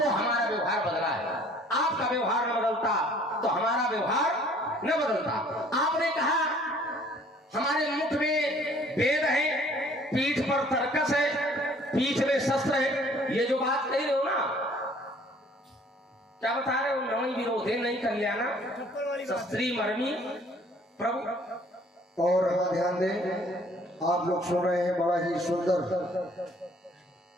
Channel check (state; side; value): normal; both; correlation 0.56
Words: हमारा व्यवहार बदला है, आपका व्यवहार न बदलता तो हमारा व्यवहार न बदलता। आपने कहा हमारे मुख में वेद है, पीठ पर तर्कस है, पीठ में शस्त्र है, ये जो बात कही रहे हो ना, क्या बता रहे हो, नवई विरोधे नहीं कल्याणा शस्त्री मर्मी प्रभु, और हाँ ध्यान दें, आप लोग सुन रहे हैं बड़ा ही सुंदर